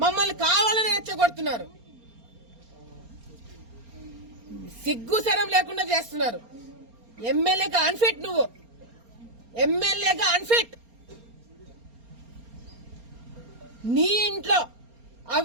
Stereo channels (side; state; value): left; late; 4.3 ms